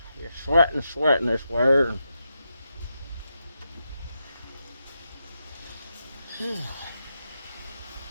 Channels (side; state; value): both; inverted; correlation -0.86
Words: you're sweating this way.